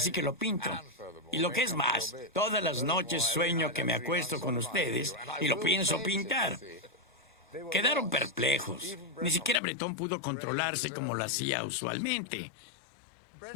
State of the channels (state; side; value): drops out; right; at 9.6 s